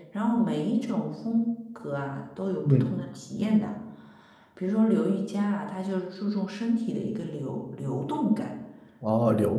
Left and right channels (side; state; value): both; identical; correlation 1.00